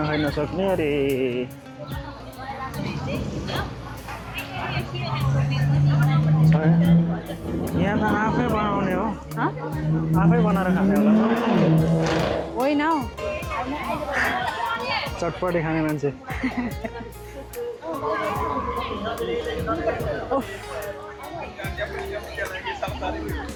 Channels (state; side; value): identical; both; correlation 1.00